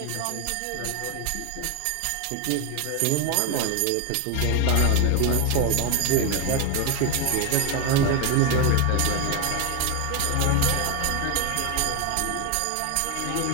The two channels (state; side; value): different; both; correlation 0.01